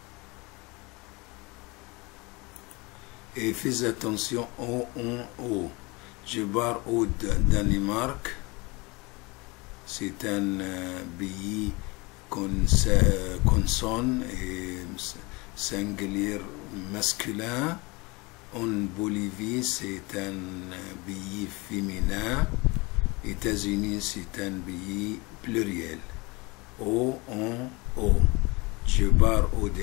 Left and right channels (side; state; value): right; quieter; 25.6 dB